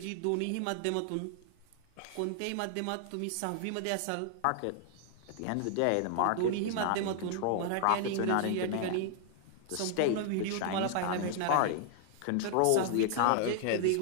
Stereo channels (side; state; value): both; different; correlation 0.00